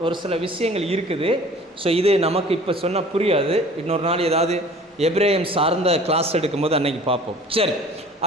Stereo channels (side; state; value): both; normal; correlation 0.47